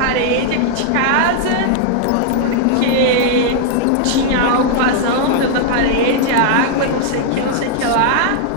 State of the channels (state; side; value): different; both; correlation 0.00